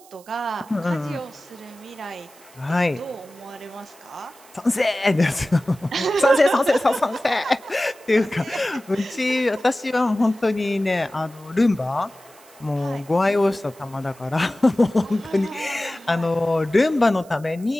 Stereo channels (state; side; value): noise; right; hiss, 25 dB below the sound